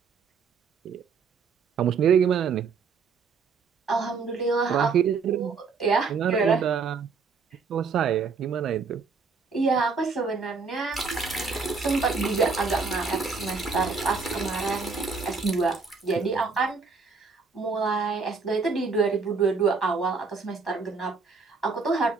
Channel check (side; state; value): left; quieter; 4.9 dB